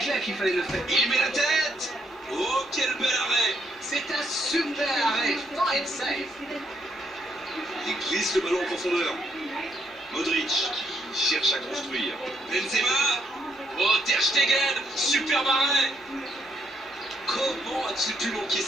qu'il fallait le faire. Il met la tête. Oh, quel bel arrêt. C'est un super arrêt, fine save. Il glisse le ballon en profondeur. Modric qui cherche à construire. Benzema. Oh, Ter Stegen. Super arrêt. Comment a-t-il pu manquer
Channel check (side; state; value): both; normal; correlation 0.73